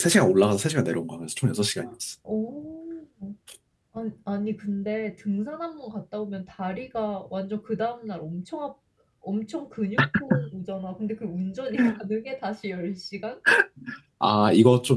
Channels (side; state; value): both; identical; correlation 1.00